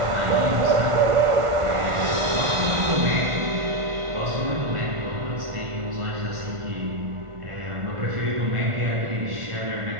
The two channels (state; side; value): late; left; 1.5 ms